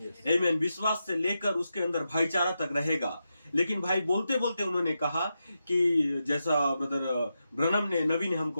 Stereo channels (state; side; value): inverted; both; correlation -0.88